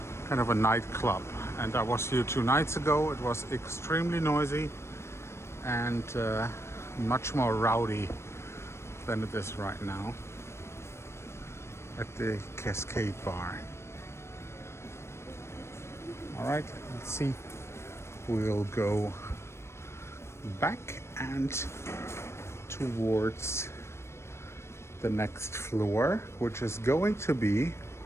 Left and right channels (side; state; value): right; late; 0.13 ms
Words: Kind of a nightclub. And I was here 2 nights ago. It was extremely noisy and much more rowdy than it is right now at the Cascade Bar. All right, let's see. We'll go back and towards the next floor, which is going to be